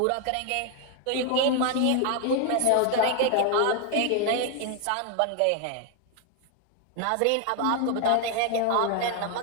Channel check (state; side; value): different; both; correlation 0.00